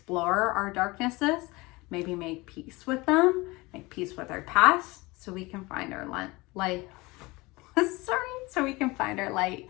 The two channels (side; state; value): right; quieter; 23.0 dB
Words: our darknesses, maybe make peace with them, make peace with our past, so we can find our light. So we can find our light